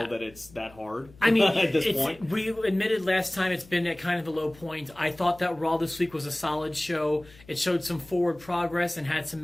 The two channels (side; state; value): left; noise; hum, 24 dB below the sound